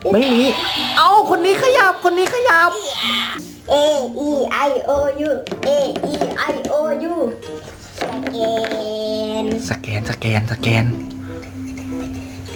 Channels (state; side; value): identical; both; correlation 1.00